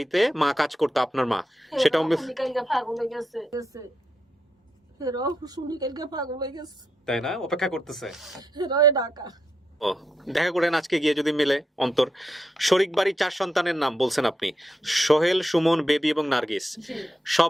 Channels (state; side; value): normal; both; correlation 0.83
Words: মা কাজ করতো আপনার মা, সেটাও পাগল হয়ে গেছে শুনি কালকে পাগল হয়ে গেছে, তাই না? অপেক্ষা করতেছে। ঢাকা ও দেখা করেন আজকে গিয়ে যদি মিলে অন্তর। শরিক বাড়ি 4 সন্তানের নাম বলছেন আপনি, সোহেল, সুমন, বেবি এবং নার্গিস,